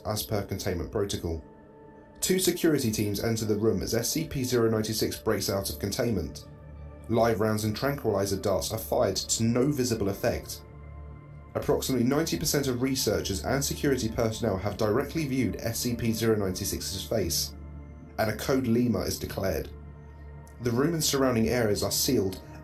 as per containment protocol. 2 security teams enter the room as SCP-096 breaks out of containment. Live rounds and tranquilizer darts are fired to no visible effect. Approximately 90% of researchers and security personnel have directly viewed SCP-096's face, and a code Lima is declared. The room and surrounding areas are sealed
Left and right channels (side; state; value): both; identical; correlation 1.00